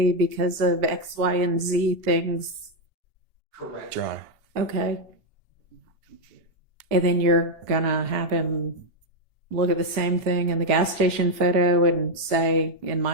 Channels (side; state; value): left; late; 2.8 ms